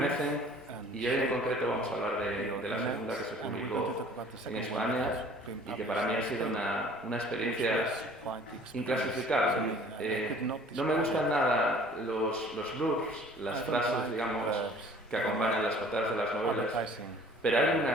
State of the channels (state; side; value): normal; both; correlation 0.51